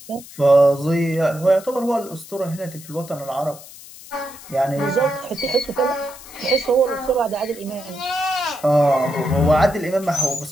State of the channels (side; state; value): left; noise; hiss, 18 dB below the sound